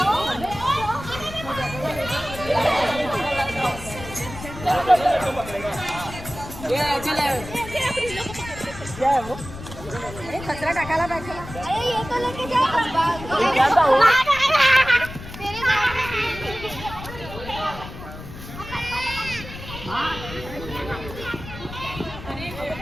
कचरा टाकायला पाहिजे.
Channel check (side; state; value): left; noise; rumble, 12 dB below the sound